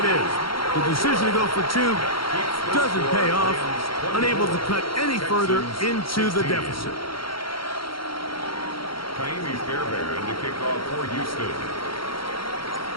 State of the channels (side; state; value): right; late; 0.73 ms